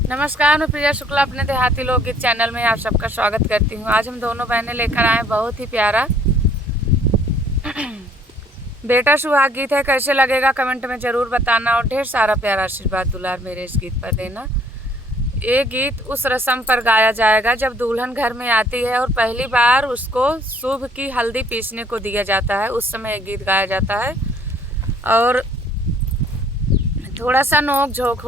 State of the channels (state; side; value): normal; both; correlation 0.60